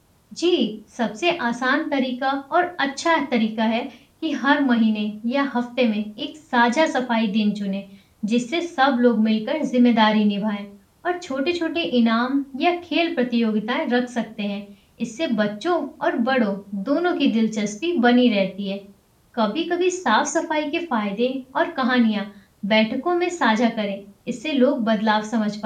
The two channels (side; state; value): both; identical; correlation 1.00